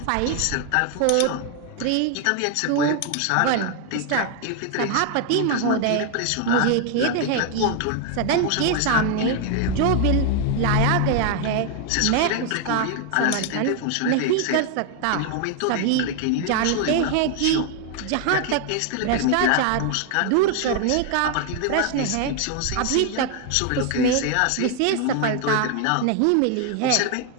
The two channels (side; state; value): both; different; correlation 0.00